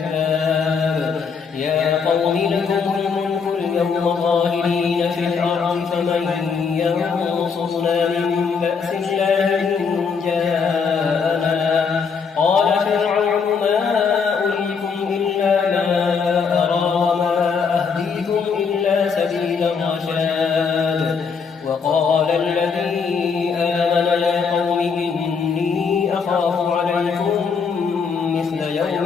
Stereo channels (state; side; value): quieter; right; 5.7 dB